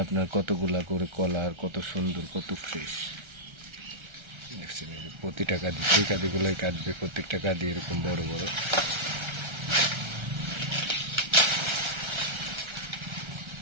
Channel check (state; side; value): late; left; 1.3 ms